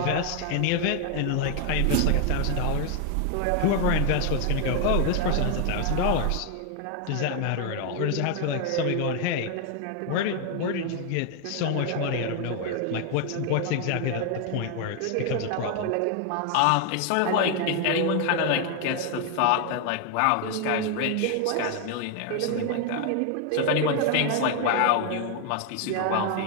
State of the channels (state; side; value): different; both; correlation 0.00